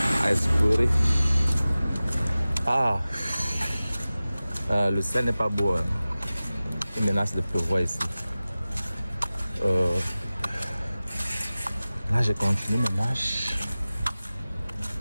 à explorer. Ah, le ciel n'est pas beau. Hein. Il menace de pleuvoir ici. Là, je continue mes marches.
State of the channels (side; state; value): both; inverted; correlation -0.97